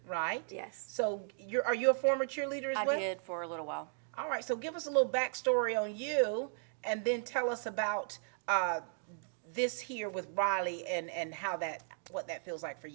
right? Yes. So are you a former cheerleader as well? I did for a little while. All right, so give us a little backstory on you, and then tell us about this here with Riley and what that feels like for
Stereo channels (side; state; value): left; silent; digital silence